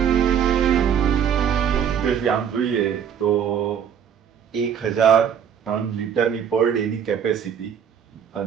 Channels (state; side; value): quieter; left; 8.2 dB